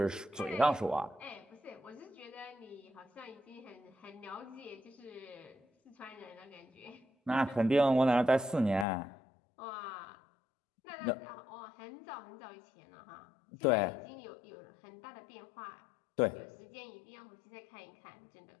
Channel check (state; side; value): drops out; right; at 8.8 s